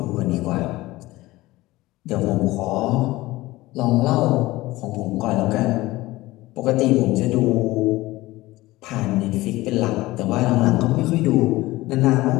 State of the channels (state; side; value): quieter; right; 18.7 dB